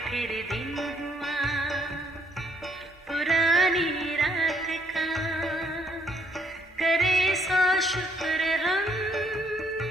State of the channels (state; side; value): normal; both; correlation 0.68